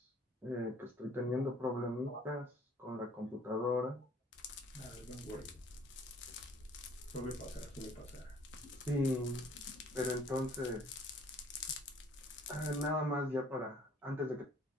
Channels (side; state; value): both; normal; correlation 0.56